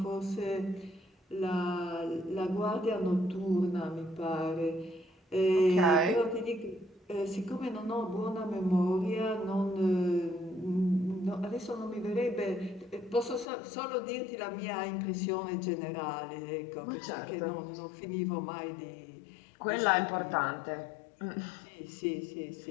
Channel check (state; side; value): drops out; right; at 13.5 s